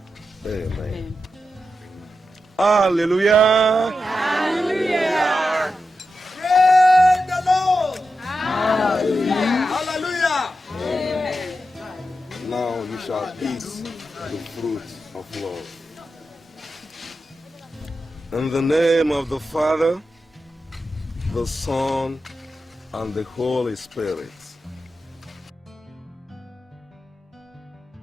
Amen. Hallelujah. Hallelujah. Praise the Lord. Hallelujah. Hallelujah. Amen. Now you shall eat the fruit of love. In the name of the Father, the Son, and the Holy Spirit.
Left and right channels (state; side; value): normal; both; correlation 0.89